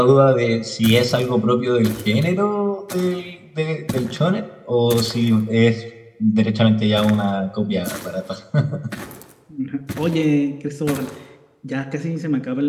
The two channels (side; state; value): both; identical; correlation 1.00